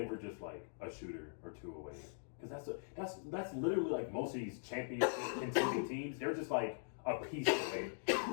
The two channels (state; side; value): silent; right; digital silence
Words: just like a shooter or two away. Because that's literally like most of these championship contending teams. They're just like a piece away.